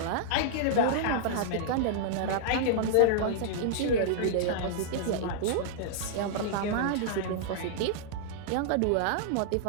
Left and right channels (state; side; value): different; both; correlation -0.02